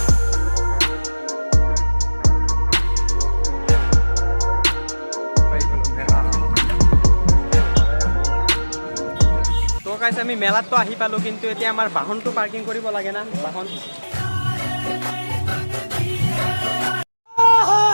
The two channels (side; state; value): both; inverted; correlation -1.00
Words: তো গাইজ আমি মেলাততো আহি পালোঁ, কিন্তু এতিয়া আমাৰ বাহনটো পাৰ্কিং কৰিব লাগে না। বাহনটো